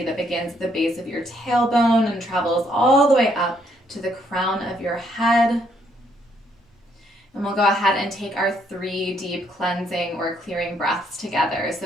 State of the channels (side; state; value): both; normal; correlation 0.71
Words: that begins at the base of your tailbone and travels all the way up to the crown of your head. And we'll go ahead and take our 3 deep cleansing or clearing breaths together.